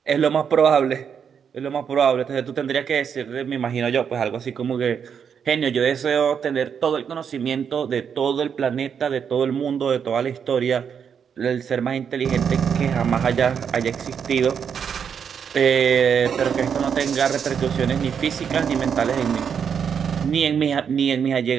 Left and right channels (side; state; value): left; quieter; 7.3 dB